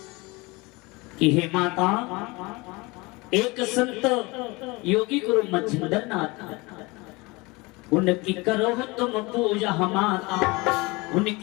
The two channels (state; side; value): quieter; right; 24.6 dB